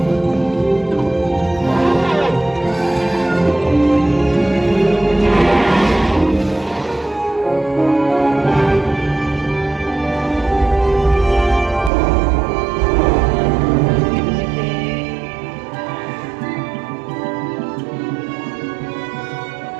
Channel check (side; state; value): left; drops out; at 11.9 s